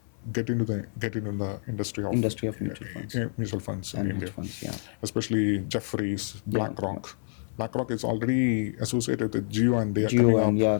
get into the industry of mutual funds in India. Especially Jefferies, BlackRock. BlackRock is already associated with Geo, and they are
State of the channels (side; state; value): right; silent; 59 dB below the other